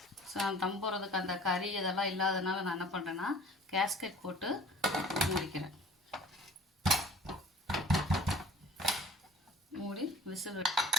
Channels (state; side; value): normal; both; correlation 0.49